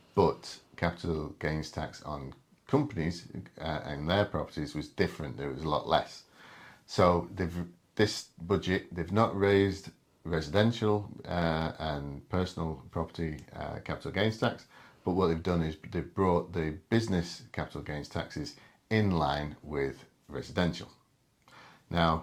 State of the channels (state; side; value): identical; both; correlation 1.00